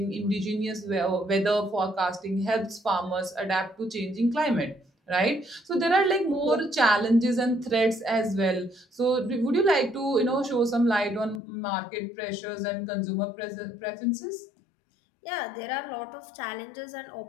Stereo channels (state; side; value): drops out; right; at 11.4 s